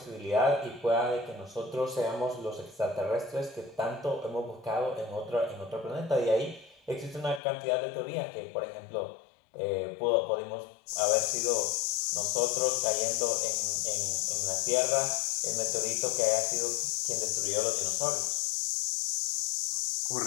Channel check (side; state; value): right; drops out; at 7.4 s